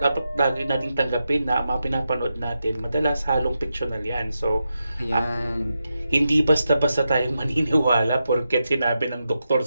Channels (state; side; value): inverted; both; correlation -0.88